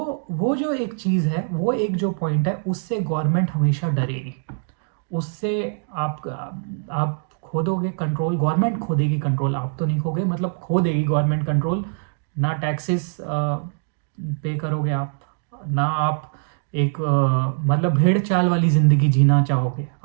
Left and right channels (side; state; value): left; silent; digital silence